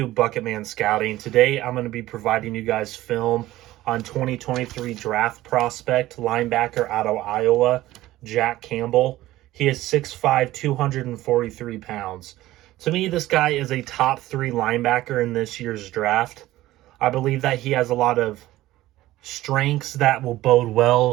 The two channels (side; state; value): left; quieter; 16.0 dB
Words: Bucketman Scouting. Today I'm going to be providing you guys film on 2023 draft prospect linebacker out of Iowa, Jack Campbell. He is 6'5", 243 pounds. To me, this guy is a top 3 linebacker in this year's draft. I believe that he has a lot of strengths that will bode